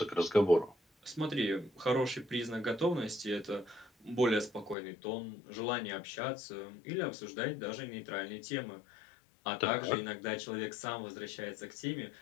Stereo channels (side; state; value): right; drops out; at 4.8 s